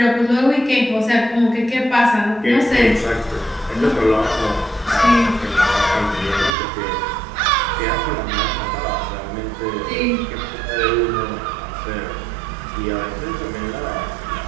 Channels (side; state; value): left; drops out; at 6.5 s